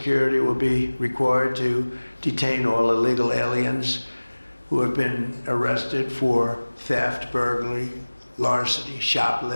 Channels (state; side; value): inverted; both; correlation -1.00